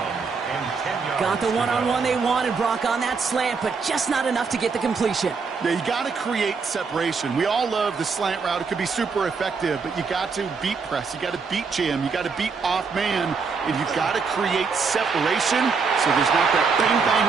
Got the one-on-one they wanted, Brock, on that slant, but just not enough to get the completion. Yeah, you got to create separation. We all love the slant route. It could be super effective, but you got to beat press. You got to beat jam. You got to beat off man, and you've got to create separation so there's not that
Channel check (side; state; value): left; quieter; 5.1 dB